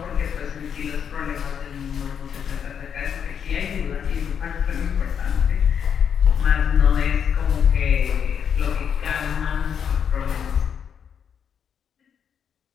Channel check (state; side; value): quieter; right; 7.7 dB